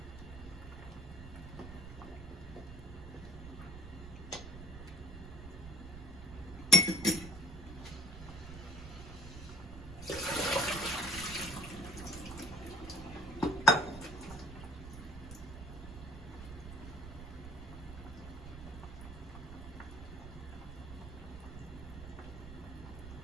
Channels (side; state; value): right; noise; rumble, 11 dB below the sound